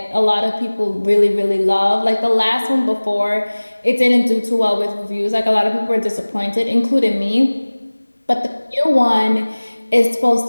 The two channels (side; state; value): both; inverted; correlation -1.00